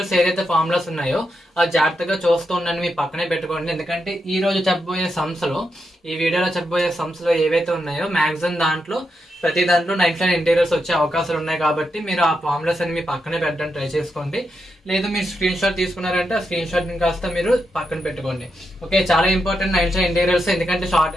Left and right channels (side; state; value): both; normal; correlation 0.84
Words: ఏదైతే ఫార్ములాస్ ఉన్నాయో అది జాగ్రత్తగా చూస్తూ ఉండండి, మీ పక్కనే పెట్టుకోండి. ఎందుకంటే ఈ రోజు చెప్పబోయే సమ్స్ లో, ఈ వీడియోలో చెప్పబోయే సమ్స్ లో ఏవైతే ఉన్నాయో మాక్సిమం దాంట్లో ప్రతి దాంట్లో నైన్త్ ఇంటీరియర్స్ వచ్చే అవకాశాలు ఉన్నాయి. కాబట్టి మీరు ఆ ఫార్ములాస్ అని మీ పక్కనే పెట్టడం ట్రై చేసుకోండి. లేదు మీరు స్క్రీన్ షాట్ తీసుకున్నారంటే ఆ స్క్రీన్ షాట్ ని కాస్త మీరు పక్కన పెట్టుకోండి. ఓకే, చాలా ఇంపార్టెంట్ నైన్త్ ఇంటీరియర్స్, ఎందుకంటే